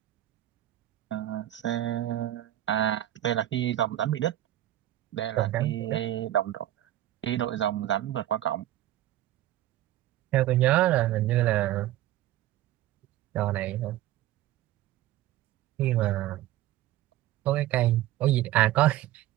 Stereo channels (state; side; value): quieter; left; 13.8 dB